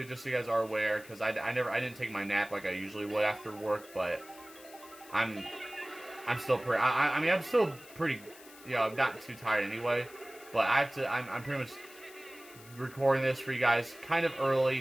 just so you guys are aware, because I didn't take my nap like I usually would after work, but I'm still pretty. I mean, I'm still pretty. You know, I'm not too tired anyway, but I have to. I'm pretty much recording this for you guys kind of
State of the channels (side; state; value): left; noise; hiss, 20 dB below the sound